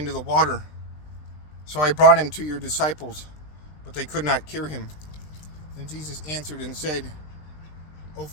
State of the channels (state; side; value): late; right; 20 ms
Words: the water. So I brought him to your disciples, but they could not cure him." Then Jesus answered and said, "O